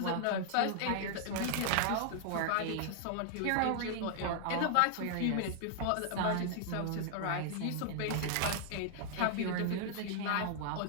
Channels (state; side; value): different; both; correlation -0.01